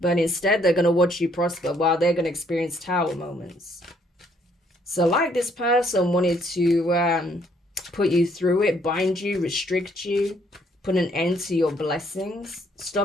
But instead, they're going to watch you prosper while they're going to experience tower moments. So like this person wanted to put you through it, bind you, restrict you, put an end to your blessings,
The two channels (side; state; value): both; normal; correlation 0.67